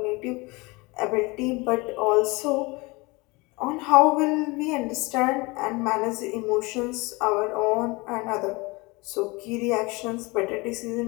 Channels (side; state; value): right; quieter; 25.1 dB